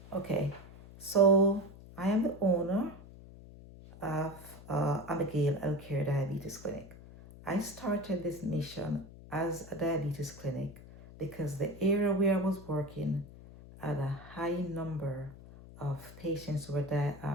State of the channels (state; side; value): noise; left; hum, 18 dB below the sound